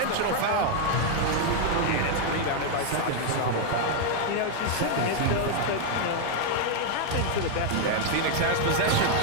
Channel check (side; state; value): both; different; correlation 0.00